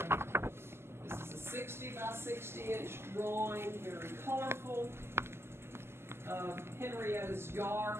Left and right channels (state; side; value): late; left; 0.12 ms